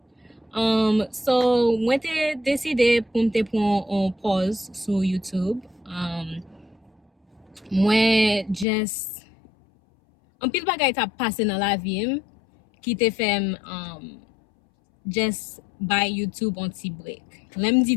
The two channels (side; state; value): right; drops out; at 8.7 s